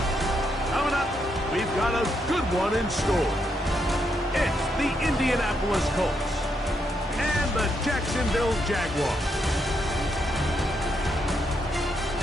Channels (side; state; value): both; normal; correlation 0.79